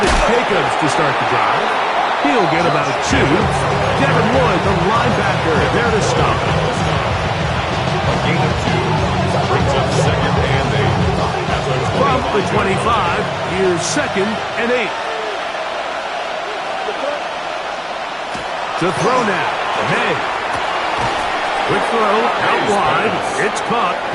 it's Jacobs to start the drive. He'll get about 2. Devin Lloyd, the linebacker, there to stop. A gain of 2 brings up second and 8. From the 25, here's second and 8. To throw now, May. Quick throw, out wide, it's caught,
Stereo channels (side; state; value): both; identical; correlation 1.00